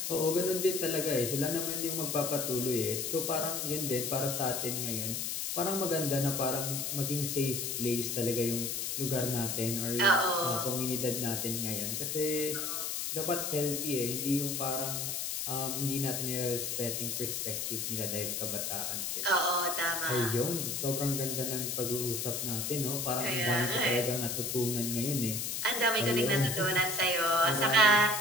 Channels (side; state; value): left; noise; hiss, 2 dB below the sound